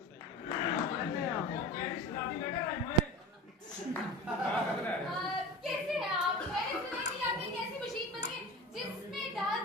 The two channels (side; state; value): both; normal; correlation 0.33